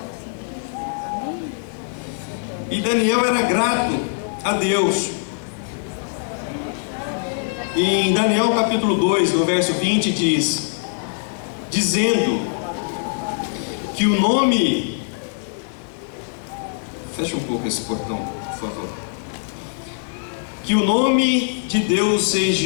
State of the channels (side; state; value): right; silent; digital silence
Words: E Daniel era grato a Deus. E em Daniel capítulo 2, no verso 20, diz: dizendo que o nome... Fecha um pouco esse portão, por favor. Que o nome de Deus